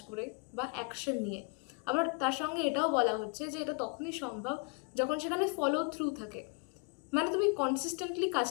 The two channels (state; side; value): quieter; right; 35.2 dB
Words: করে বা অ্যাকশন নিয়ে। আবার তার সঙ্গে এটাও বলা হচ্ছে যে এটা তখনই সম্ভব যখন সেখানে ফলো থ্রু থাকে, মানে তুমি কনসিস্টেন্টলি